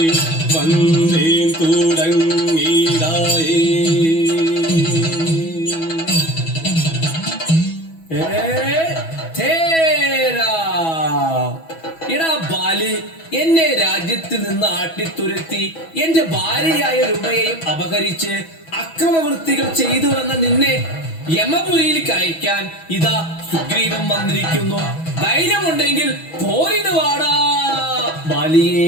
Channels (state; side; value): late; right; 6.1 ms